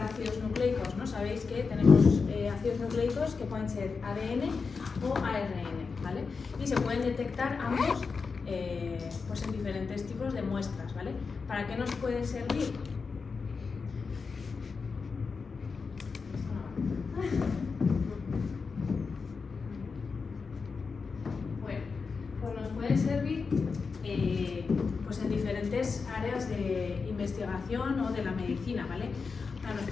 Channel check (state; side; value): quieter; right; 4.9 dB